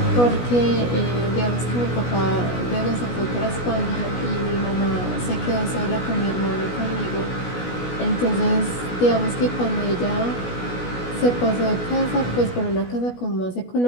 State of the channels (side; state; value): right; late; 16 ms